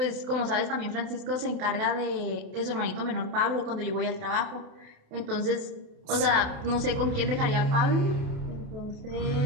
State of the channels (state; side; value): late; left; 28 ms